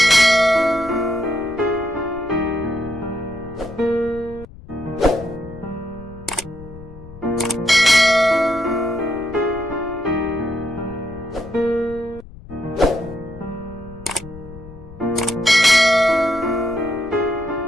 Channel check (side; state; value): left; noise; rumble, 17 dB below the sound